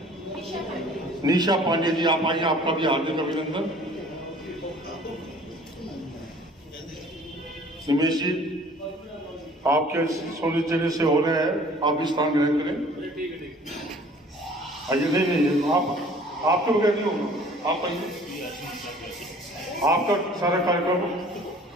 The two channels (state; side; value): normal; both; correlation 0.52